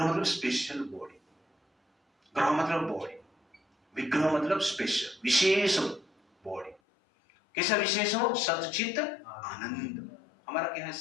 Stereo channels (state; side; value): drops out; right; at 6.8 s